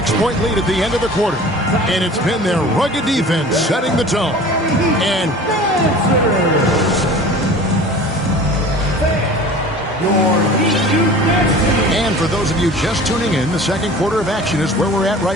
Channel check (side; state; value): both; normal; correlation 0.41